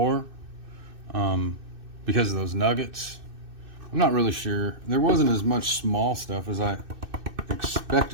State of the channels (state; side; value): late; left; 2.6 ms